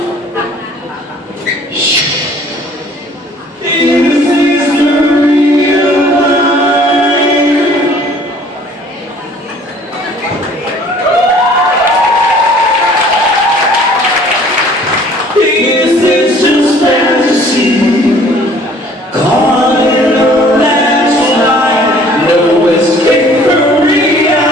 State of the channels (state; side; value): normal; both; correlation 0.54